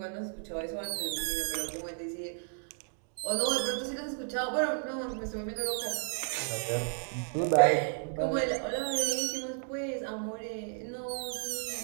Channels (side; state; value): left; silent; 56 dB below the other